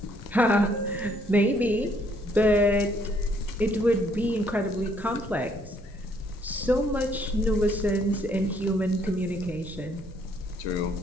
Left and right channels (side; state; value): both; normal; correlation 0.67